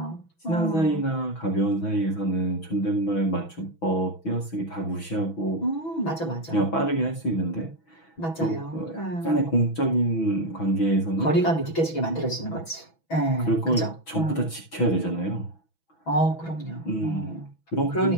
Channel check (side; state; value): right; late; 6.1 ms